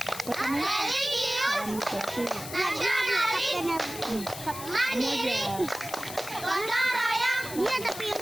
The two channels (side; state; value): left; noise; hiss, 11 dB below the sound